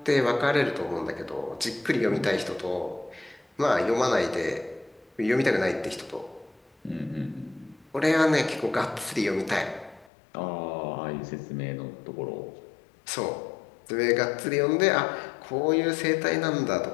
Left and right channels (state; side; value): drops out; right; at 10.1 s